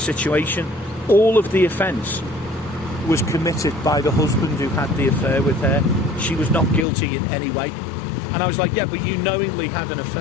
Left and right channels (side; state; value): right; drops out; at 6.9 s